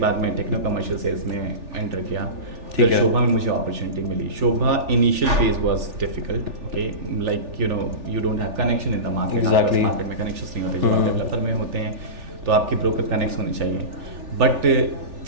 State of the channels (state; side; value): late; left; 3.4 ms